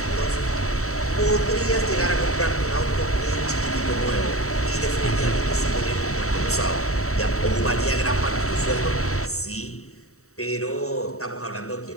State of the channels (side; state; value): right; late; 0.64 ms